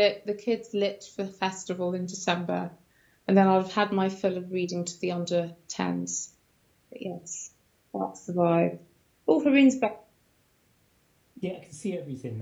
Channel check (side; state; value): both; identical; correlation 1.00